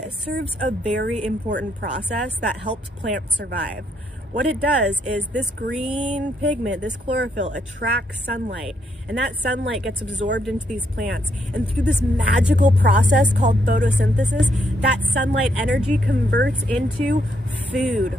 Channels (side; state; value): both; normal; correlation 0.74